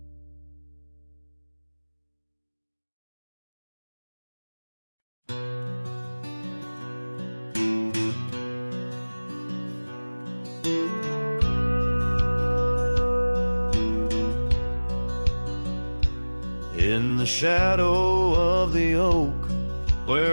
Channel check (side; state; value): both; inverted; correlation -1.00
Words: In the shadow of the oak,